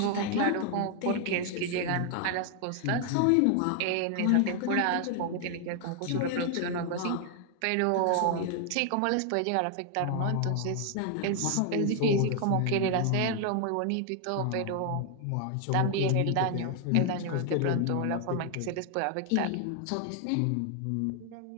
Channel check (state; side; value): different; both; correlation 0.00